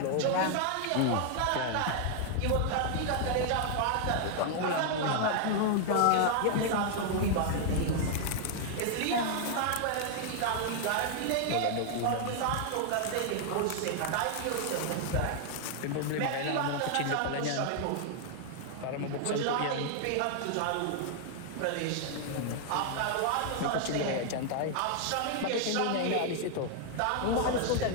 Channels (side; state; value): both; different; correlation 0.00